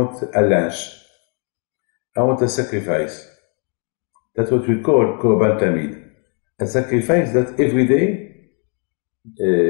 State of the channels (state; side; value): quieter; right; 38.9 dB